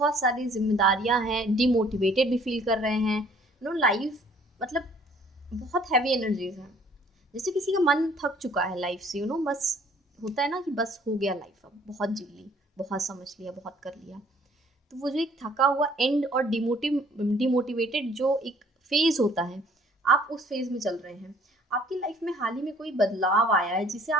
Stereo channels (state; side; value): normal; both; correlation 0.58